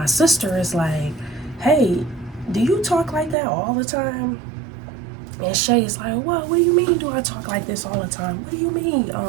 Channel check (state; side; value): drops out; left; at 3.4 s